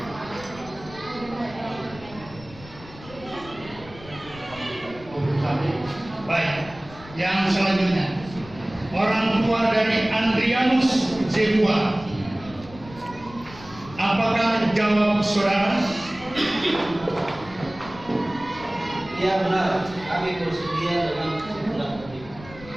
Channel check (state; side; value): noise; left; rumble, 18 dB below the sound